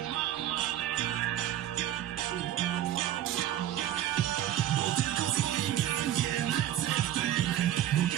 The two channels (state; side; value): quieter; left; 12.2 dB